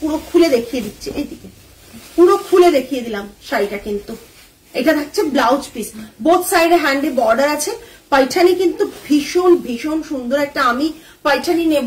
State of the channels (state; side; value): identical; both; correlation 1.00